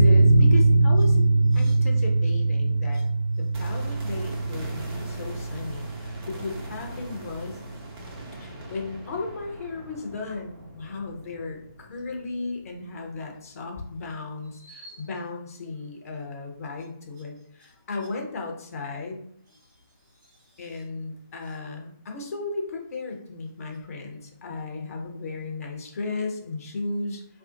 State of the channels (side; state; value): both; inverted; correlation -0.90